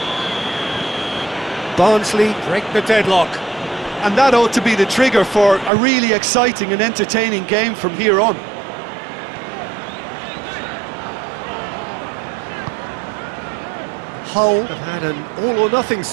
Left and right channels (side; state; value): left; drops out; at 5.7 s